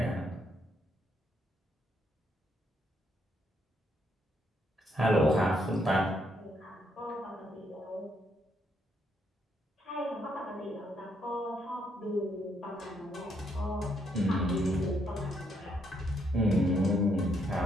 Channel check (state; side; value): normal; both; correlation 0.74